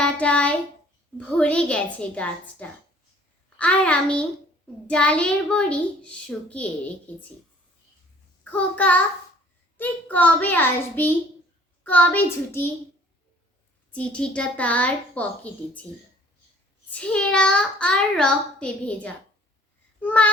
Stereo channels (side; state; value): both; normal; correlation 0.55